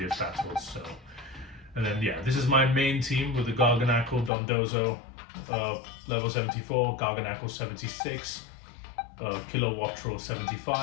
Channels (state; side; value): drops out; right; at 4.3 s